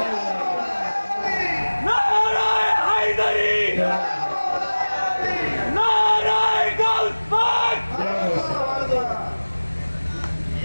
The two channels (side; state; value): both; inverted; correlation -1.00